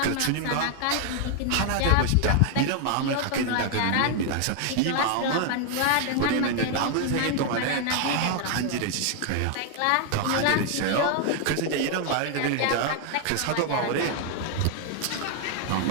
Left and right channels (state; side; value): different; both; correlation 0.00